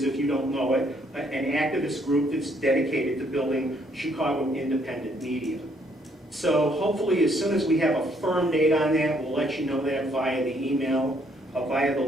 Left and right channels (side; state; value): both; normal; correlation 0.68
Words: if you don't know it, an activist group that's dedicated to building Chicago independent media. So hopefully as soon as we have a firm date on that, we'll let you know that via the email, via the